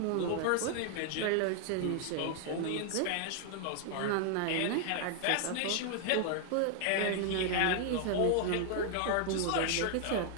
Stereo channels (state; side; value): different; both; correlation 0.00